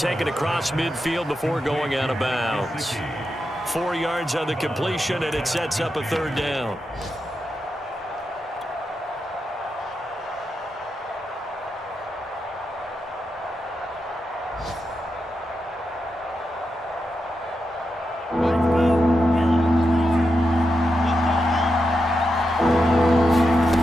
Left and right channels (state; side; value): normal; both; correlation 0.87